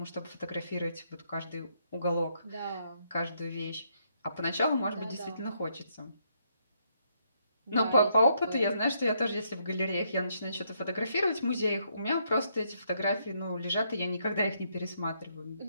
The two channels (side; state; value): both; inverted; correlation -0.74